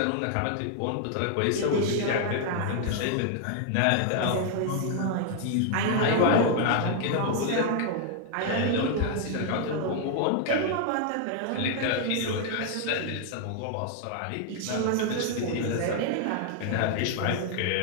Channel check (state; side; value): different; both; correlation 0.00